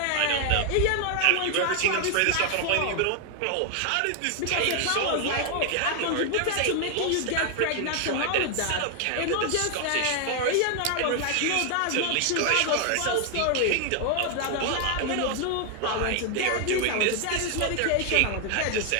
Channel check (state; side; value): different; both; correlation 0.00